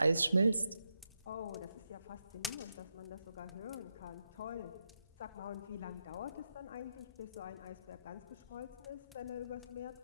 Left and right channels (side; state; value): both; inverted; correlation -0.84